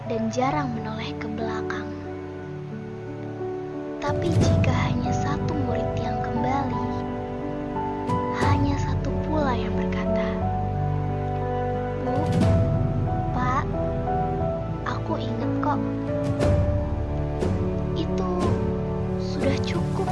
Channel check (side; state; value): both; identical; correlation 1.00